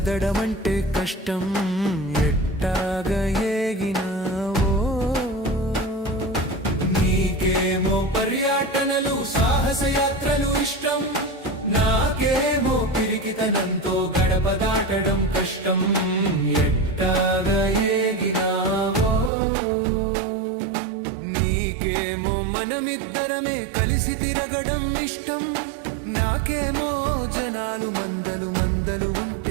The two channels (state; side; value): drops out; left; at 19.3 s